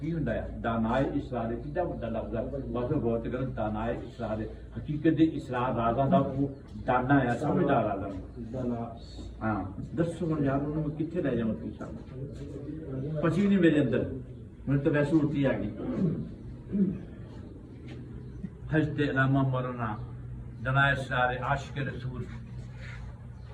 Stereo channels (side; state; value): both; identical; correlation 1.00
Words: हुंदा है दानाए इसरार कितना बड़ा लफ्ज़ है बस गौर ते करो दानाए इसरार हकीकत दे इसरार राज़ां दा वो दाना है समझदार राज़ा हाँ दसो हुण यार उन्होंने कित्थे ले जावां तुसीं सानूं पची नहीं मेरे अंदर मैंने तो वैसे उल्टी आ गई हजते अलामा मरना दनाए सारे आशिक रसूल